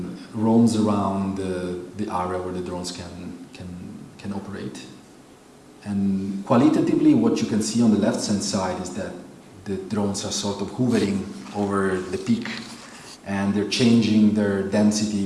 roams around the area where the drones can operate. And qualitatively, what you can see on the left-hand side is that the drones are sort of hovering over the peak, and they're changing their density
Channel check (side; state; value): both; identical; correlation 1.00